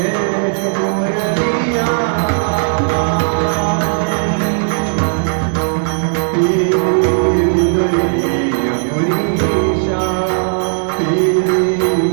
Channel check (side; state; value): left; silent; digital silence